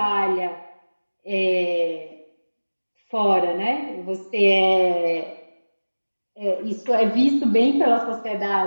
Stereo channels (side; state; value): both; inverted; correlation -1.00